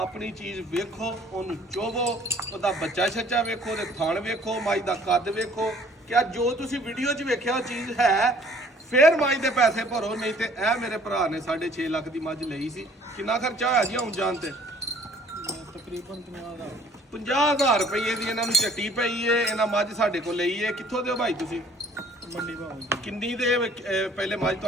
ਚੀਜ਼ ਵੇਖੋ, ਉਹਨੂੰ ਚੋਵੋ, ਉਹਦਾ ਬੱਚਾ ਛੱਚਾ ਵੇਖੋ, ਉਹਦੇ ਥਣ ਵੇਖੋ, ਮੱਝ ਦਾ ਕੱਦ ਵੇਖੋ। ਕਿਆ ਜੋ ਤੁਸੀਂ ਵੀਡੀਓ 'ਚ ਵੇਖਿਆ ਉਹ ਚੀਜ਼ ਹੈ, ਫਿਰ ਮੱਝ ਦੇ ਪੈਸੇ ਭਰੋ। ਨਹੀਂ ਤੇ ਇਹ ਮੇਰੇ ਭਰਾ ਨੇ 6.5 ਲੱਖ ਦੀ ਮੱਝ ਲਈ ਸੀ। ਕਿੰਨਾ ਖਰਚਾ ਹੋਇਆ ਜੀ ਆਉਣ ਜਾਣ ਤੇ? ਤਕਰੀਬਨ 50,000 ਰੁਪਏ ਦੀ ਇਹਨਾਂ ਨੂੰ ਝੱਟੀ ਪਈ ਏ। ਇਹਨਾਂ ਮੱਝ ਸਾਡੇ ਕੋਲ ਲਈ ਏ। ਕਿੱਥੋਂ ਦਿਓ ਭਾਈ ਤੁਸੀਂ? ਮੰਡੀ ਭਾਅ ਕਿੰਨੀ ਦੇ ਪਹਿਲੇ ਮੱਝ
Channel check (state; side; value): normal; both; correlation 0.56